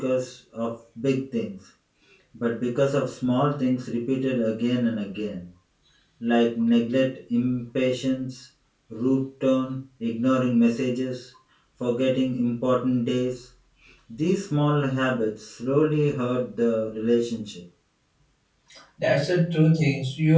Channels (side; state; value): both; identical; correlation 1.00